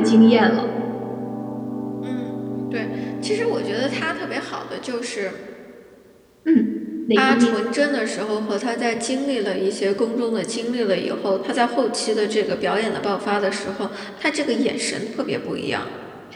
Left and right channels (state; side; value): identical; both; correlation 1.00